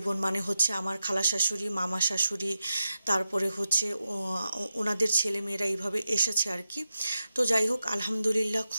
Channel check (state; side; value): inverted; both; correlation -0.90